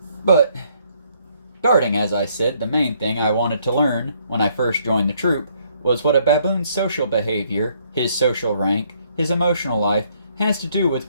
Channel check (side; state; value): both; inverted; correlation -0.68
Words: But, darting, as I said, the main thing I wanted to learn when I first joined the troop was what a baboon's social behavior, his social rank, his emotional life, has to do with